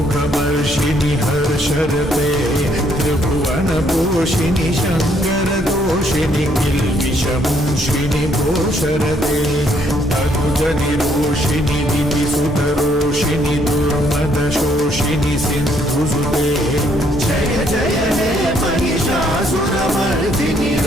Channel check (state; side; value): normal; both; correlation 0.69